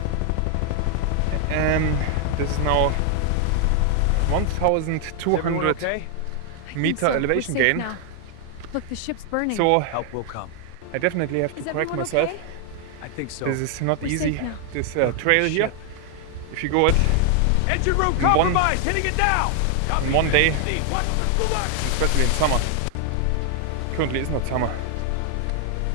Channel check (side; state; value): both; different; correlation 0.00